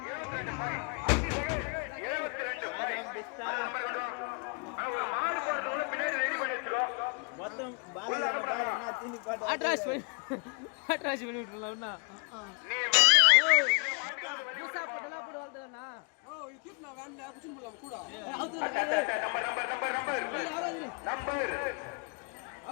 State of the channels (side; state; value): right; quieter; 36.4 dB